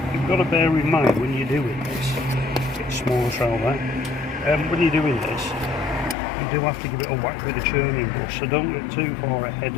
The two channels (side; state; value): right; drops out; at 6.2 s